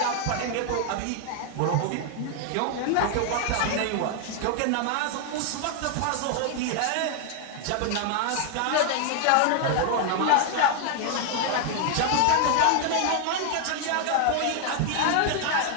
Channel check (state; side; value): different; both; correlation 0.00